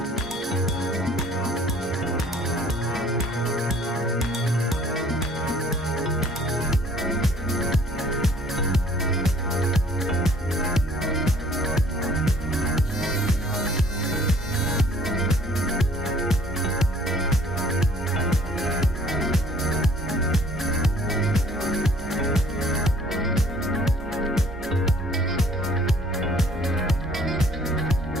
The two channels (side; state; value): both; normal; correlation 0.56